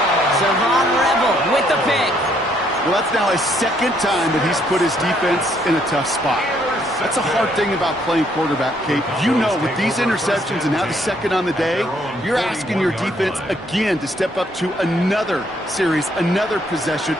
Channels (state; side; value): normal; both; correlation 0.69